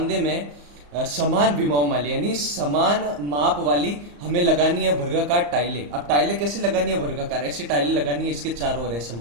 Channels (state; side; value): late; left; 34 ms